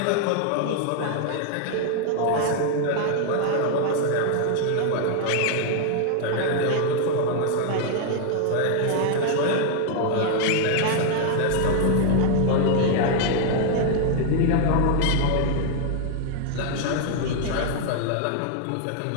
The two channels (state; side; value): different; both; correlation 0.00